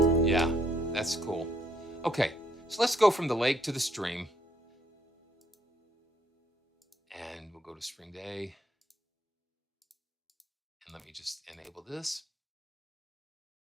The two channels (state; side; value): normal; both; correlation 0.70